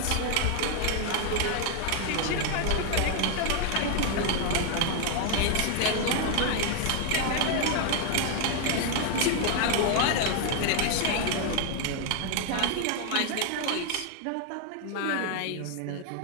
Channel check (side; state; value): both; different; correlation 0.00